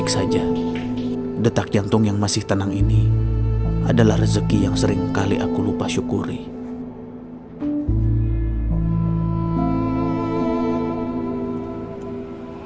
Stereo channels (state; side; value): identical; both; correlation 1.00